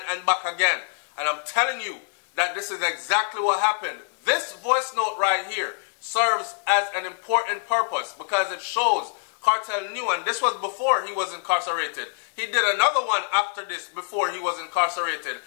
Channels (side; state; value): right; silent; digital silence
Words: and back again. And I'm telling you that this is exactly what happened. This voice note right here serves as an important purpose because it shows Kartel knew, and this was before he was incarcerated. He did another one after this before he was incarcerated.